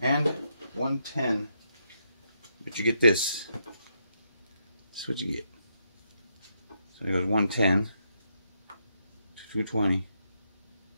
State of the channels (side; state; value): both; inverted; correlation -0.79